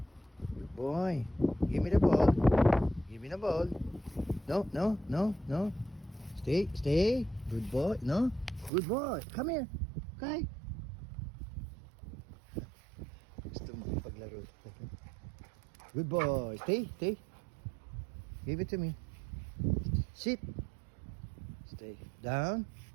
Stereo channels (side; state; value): left; drops out; at 8.7 s